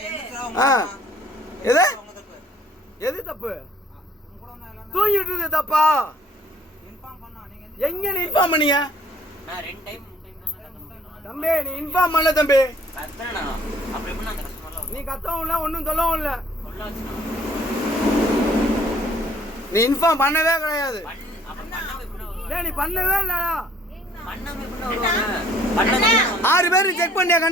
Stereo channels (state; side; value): normal; both; correlation 0.57